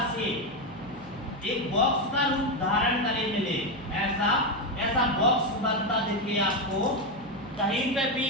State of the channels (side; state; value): right; noise; hum, 20 dB below the sound